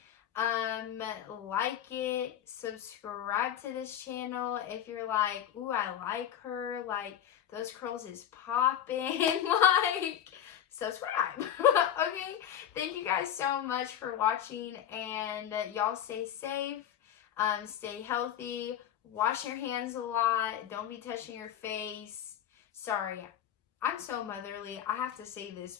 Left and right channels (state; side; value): quieter; right; 10.3 dB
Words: Like it, subscribe to this channel if you're like, ooh, I like her, like those curls is popping. Like, subscribe. Okay, thank you guys so much for watching, and y'all stay safe, stay healthy, wash your hands a lot, don't be touching your face. Sorry, I'm so motherly. I have to say this